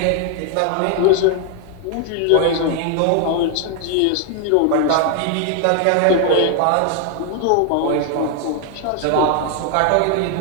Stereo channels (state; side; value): different; both; correlation 0.00